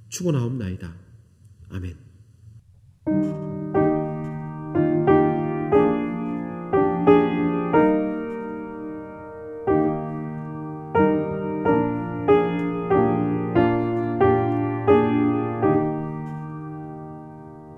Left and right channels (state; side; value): identical; both; correlation 1.00